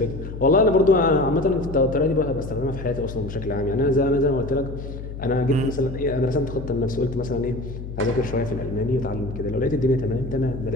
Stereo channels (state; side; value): noise; left; hum, 9 dB below the sound